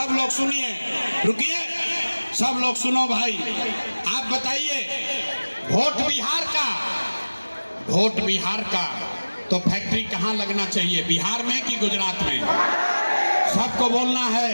लोग सुनिए, रुकिए, सब लोग सुनो भाई। आप बताइए, वोट बिहार का तो फैक्ट्री कहाँ लगना चाहिए, बिहार में कि गुजरात में? सबको बोलना है।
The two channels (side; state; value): both; inverted; correlation -1.00